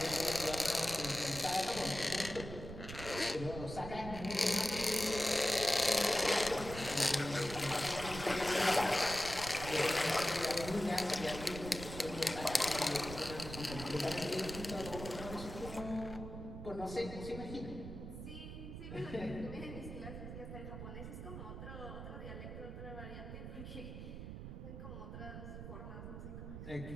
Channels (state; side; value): noise; right; rumble, 9 dB below the sound